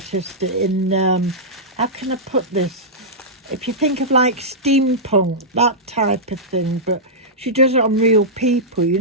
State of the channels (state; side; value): normal; both; correlation -0.12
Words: in, how can I put this? If you think of like steampunk, that type of thing, but she does it on real people, you